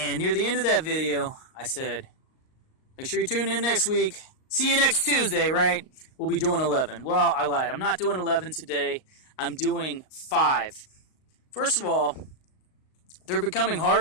near the end of that video, I said, make sure you tune in next week. See you next Tuesday, right? We'll be doing 11. Well, I lied. I'm not doing 11 today. I'm doing 5. First of all, they're becoming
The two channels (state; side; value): late; right; 38 ms